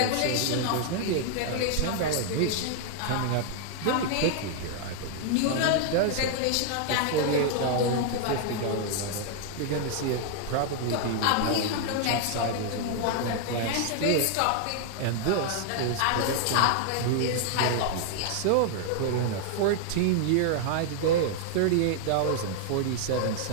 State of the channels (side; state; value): both; different; correlation 0.00